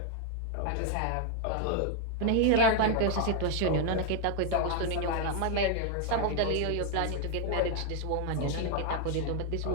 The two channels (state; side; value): different; both; correlation 0.00